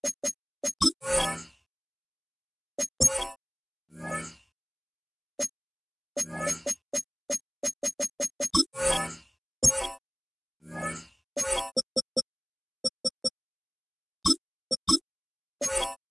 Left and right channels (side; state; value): both; identical; correlation 1.00